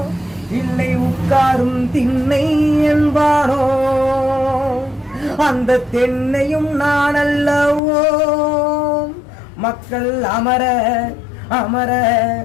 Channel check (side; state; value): right; drops out; at 7.8 s